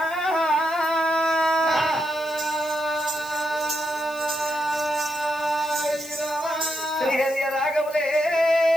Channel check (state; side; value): noise; left; hiss, 21 dB below the sound